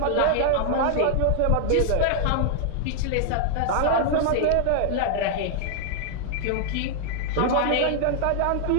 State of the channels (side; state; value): both; different; correlation -0.01